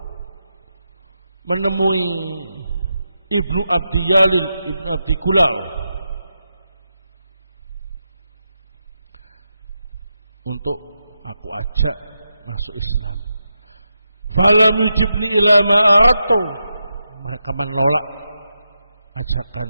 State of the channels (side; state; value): both; inverted; correlation -0.87